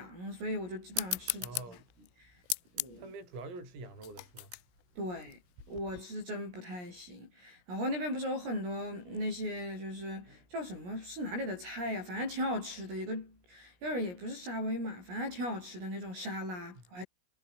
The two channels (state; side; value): late; left; 17 ms